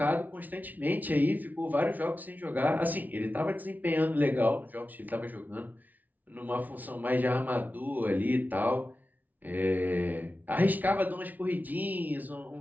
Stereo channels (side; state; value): left; late; 0.078 ms